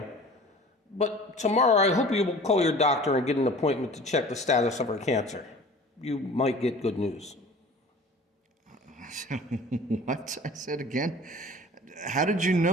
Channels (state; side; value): normal; both; correlation 0.43